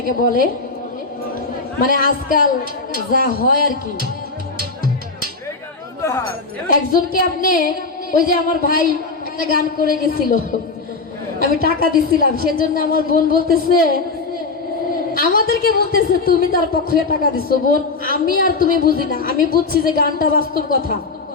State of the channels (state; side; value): quieter; right; 4.0 dB